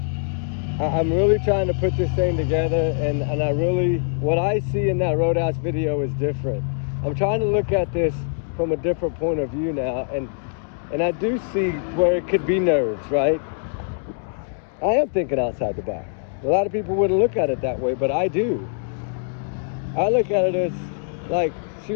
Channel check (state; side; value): silent; right; digital silence